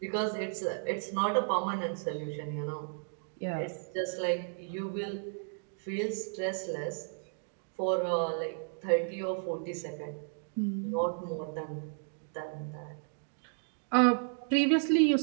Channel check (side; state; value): left; silent; digital silence